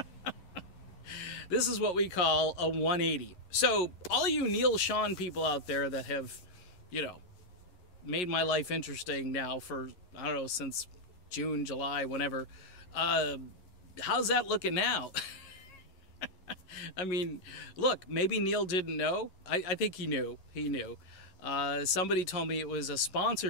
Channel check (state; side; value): late; right; 11 ms